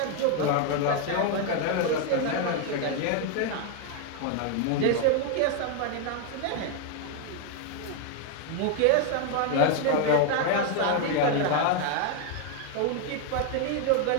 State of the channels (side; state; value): both; different; correlation 0.00